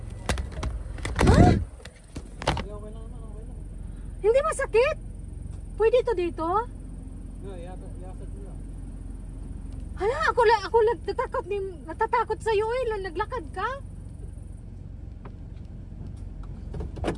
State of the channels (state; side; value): identical; both; correlation 1.00